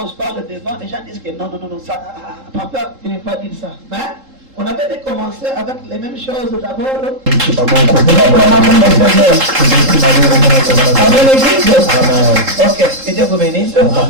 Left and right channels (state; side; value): late; left; 3.7 ms